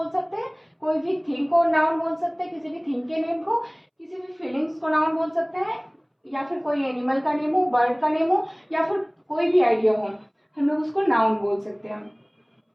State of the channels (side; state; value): both; identical; correlation 1.00